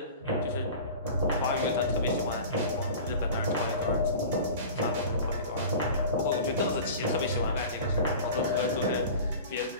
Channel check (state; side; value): inverted; both; correlation -0.36